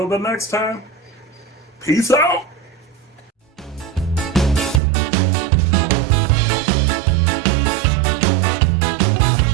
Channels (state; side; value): drops out; left; at 4.8 s